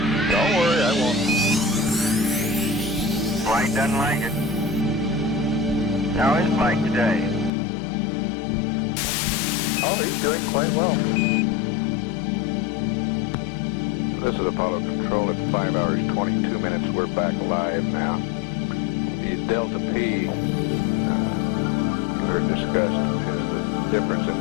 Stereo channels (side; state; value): right; drops out; at 7.5 s